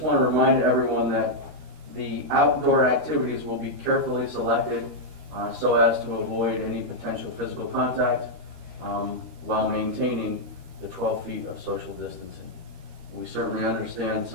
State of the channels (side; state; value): left; late; 13 ms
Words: want to remind everyone that the outdoor activities will be carefully selected so as to avoid any potential physical contact while maintaining the 12 feet of social distancing. We certainly understand